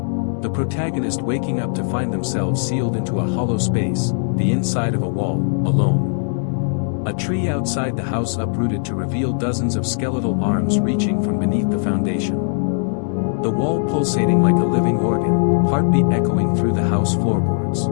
The protagonist waking up to find themselves sealed into a hollow space, the inside of a wall, alone. A tree outside the house uprooted to reveal dozens of skeletal arms reaching from beneath the foundation. The wall pulsating like a living organ, heartbeat echoing through the house floorboards.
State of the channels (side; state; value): right; silent; digital silence